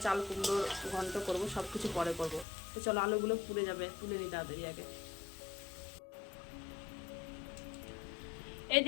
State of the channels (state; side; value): drops out; right; at 2.5 s